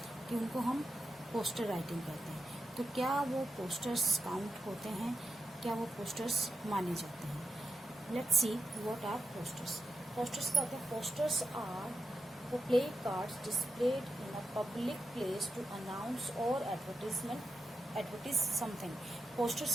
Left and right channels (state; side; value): normal; both; correlation 0.88